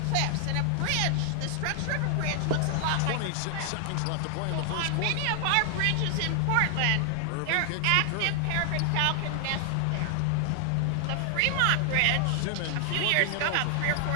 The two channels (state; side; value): different; both; correlation 0.00